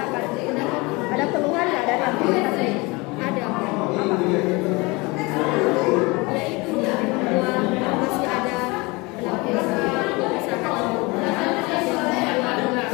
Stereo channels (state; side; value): quieter; right; 25.4 dB